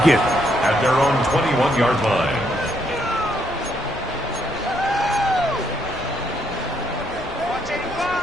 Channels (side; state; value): left; noise; rumble, 18 dB below the sound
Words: At their own 21-yard line.